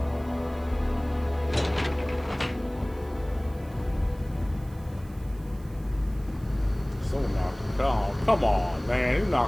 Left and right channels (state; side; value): noise; right; hiss, 26 dB below the sound